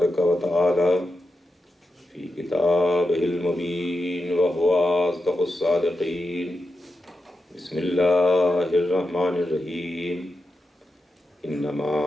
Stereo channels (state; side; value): normal; both; correlation 0.88